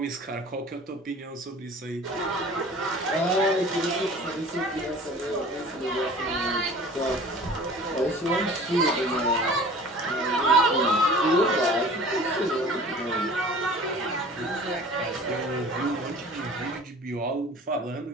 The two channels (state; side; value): normal; both; correlation 0.44